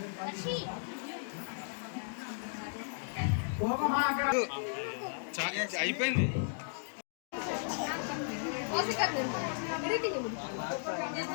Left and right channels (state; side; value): silent; right; digital silence